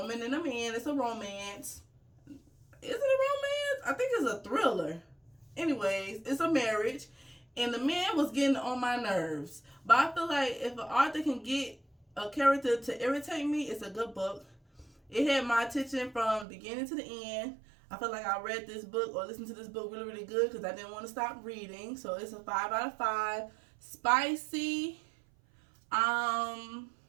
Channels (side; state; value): left; drops out; at 16.4 s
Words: and a man, it's a romance. Is it a romance? I think it's a thriller. Anyways, it's a marriage, and the man was getting on my nerves. But I feel like if an author can get a character to irritate me, it's a good book. It had my attention from beginning to the end. I feel like I read this book or listened to this book really, really good because I didn't want to stop reading. So it's a 5 out of 5. Spicy.